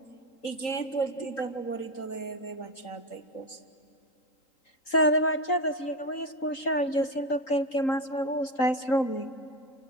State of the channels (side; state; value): right; late; 3.8 ms